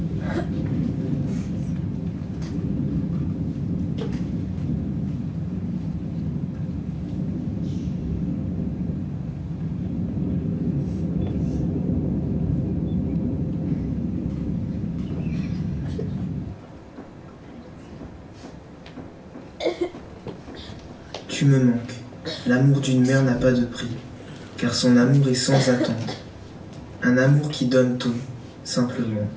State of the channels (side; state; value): both; identical; correlation 1.00